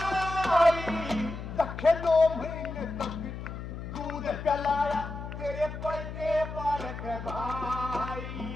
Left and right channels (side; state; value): left; noise; hum, 8 dB below the sound